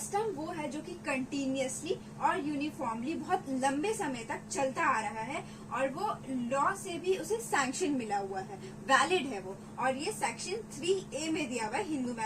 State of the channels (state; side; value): identical; both; correlation 1.00